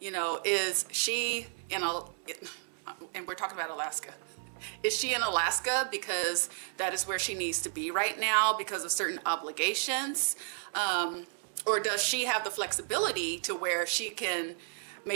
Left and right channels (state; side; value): silent; left; digital silence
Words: know, is she in and we're talking about Alaska. Is she in Alaska because that is where she needs to be right now because of certain obligations? Or does she have the flexibility to where